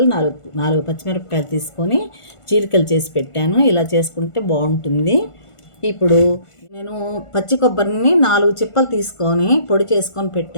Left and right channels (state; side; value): late; right; 1.5 ms